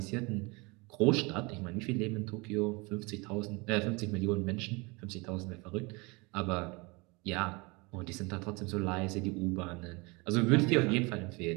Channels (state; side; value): quieter; left; 27.0 dB